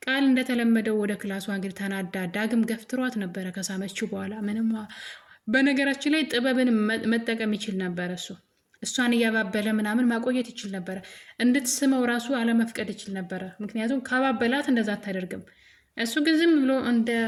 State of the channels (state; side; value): identical; both; correlation 1.00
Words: ቃል እንደተለመደው ወደ ክላሷ እንግዲህ ተናዳ ዳግም ገፍትሯት ነበረ ከሳመችው በኋላ ምንም በነገራችን ላይ ጥበብን መጠቀም ይችል ነበረ። እሷን እያባበለ ምናምን ማቆየት ይችል ነበረ። እንድትስመው ራሱ አለመፍቀድ ይችል ነበረ። ምክንያቱም ካባበላት እንደዛ አታደርግም። እሱ ግን ዝም ብሎ